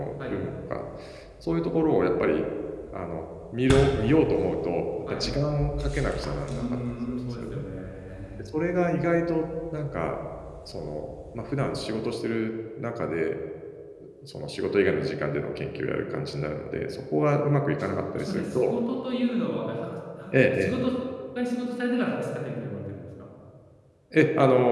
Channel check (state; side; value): identical; both; correlation 1.00